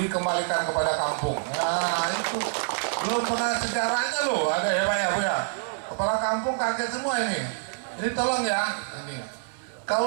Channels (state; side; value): silent; left; 60 dB below the other